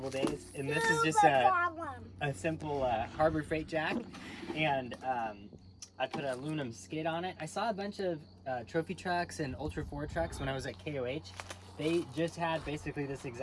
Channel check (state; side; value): identical; both; correlation 1.00